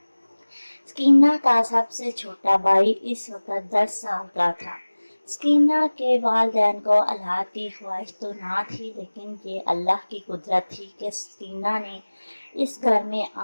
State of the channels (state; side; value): inverted; both; correlation -1.00